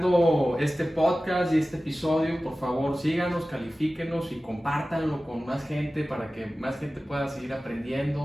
este podcast y este episodio, por favor síganos, califíquenos y compártanlo con más gente, para que más gente pueda seguir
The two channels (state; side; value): normal; both; correlation 0.96